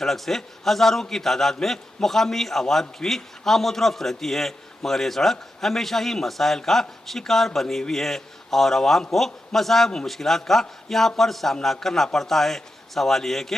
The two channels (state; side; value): normal; both; correlation 0.89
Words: से हज़ारों की तादाद में मुकामी आवाम की भी आमद-ओ-रफ्त रहती है, मगर ये सड़क हमेशा ही मसाइल का शिकार बनी हुई है और आवाम को मसाइब और मुश्किलात का यहाँ पर सामना करना पड़ता है। सवाल ये है कि